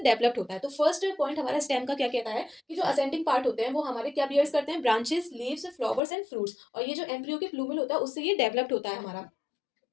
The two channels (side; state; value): right; drops out; at 6.0 s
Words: होता है। तो फर्स्ट पॉइंट हमारा स्टेम का क्या कहता है कि जो असेंडिंग पार्ट होते हैं वो हमारे क्या बियर्स करते हैं, branches, leaves, flowers and fruits, और ये जो एम्ब्रियो के प्लूमिल होता है उससे ये डेवलप्ड होता है हमारा